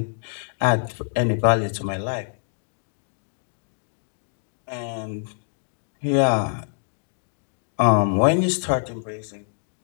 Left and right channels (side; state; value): right; silent; 61 dB below the other